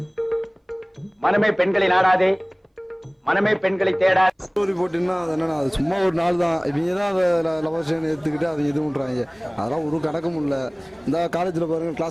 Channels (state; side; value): identical; both; correlation 1.00